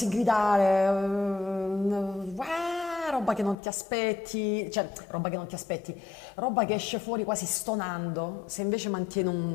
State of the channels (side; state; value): right; drops out; at 3.6 s